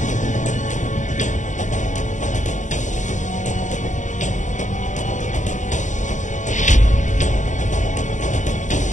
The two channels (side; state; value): right; late; 0.36 ms